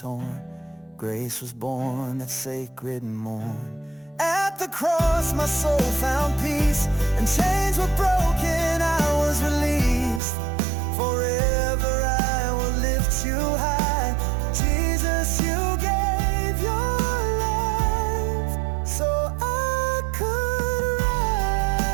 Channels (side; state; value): left; drops out; at 10.2 s